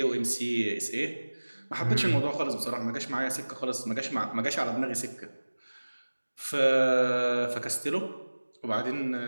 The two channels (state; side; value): inverted; both; correlation -1.00